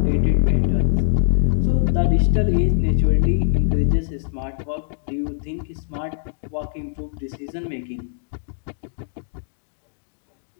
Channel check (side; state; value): right; silent; digital silence